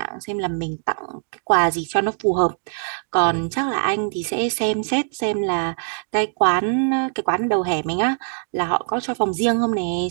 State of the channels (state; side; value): silent; left; digital silence